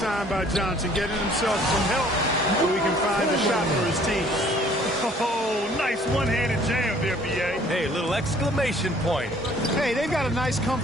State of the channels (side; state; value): both; normal; correlation 0.57